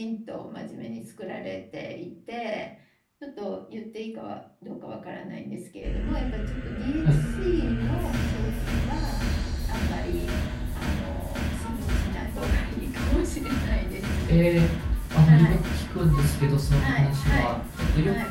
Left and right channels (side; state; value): both; identical; correlation 1.00